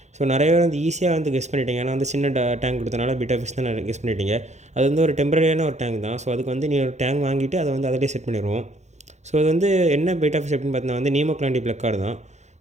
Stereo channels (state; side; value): late; left; 0.33 ms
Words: ஸோ நிறைய பேர் வந்து ஈஸியாக வந்து கெஸ் பண்ணிட்டீங்க. ஏன்னா வந்து சின்ன டேங்க் கொடுத்தனால பீட்டா ஃபிஷ் தான் கெஸ் பண்ணிட்டீங்க. அது வந்து ஒரு டெம்பரரியான ஒரு டேங்க் தான். ஸோ அதுக்கு வந்து நீ ஒரு டேங்க் வாங்கிட்டு அதை வந்து அதிலே செட் பண்ணிடுவோம். ஸோ அது வந்து என்ன பீட்டா ஃபிஷ் அப்படின்னு பார்த்தீங்கன்னா வந்து நீமோக்லாண்டி பிளக்கார்டு தான்.